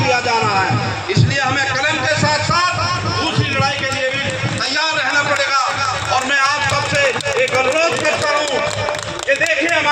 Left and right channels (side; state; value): both; identical; correlation 1.00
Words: जा रहा है, इसलिए हमें कलम के साथ साथ दूसरी लड़ाई के लिए भी तैयार रहना पड़ेगा। और मैं आप सबसे एक अनुरोध करता हूँ कि देखिए,